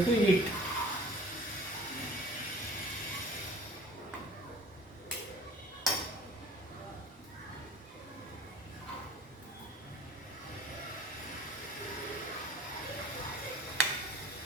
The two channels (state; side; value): normal; both; correlation 0.48